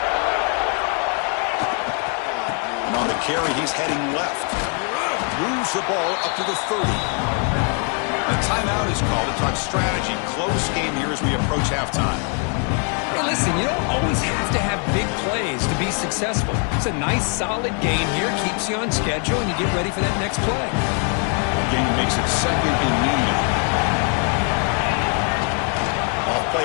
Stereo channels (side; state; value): right; quieter; 40.0 dB